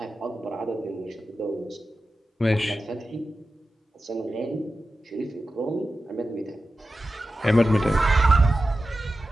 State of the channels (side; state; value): both; normal; correlation 0.93